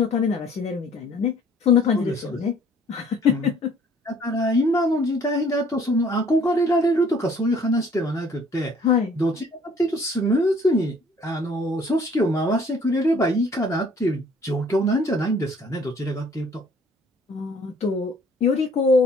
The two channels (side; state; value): both; normal; correlation 0.57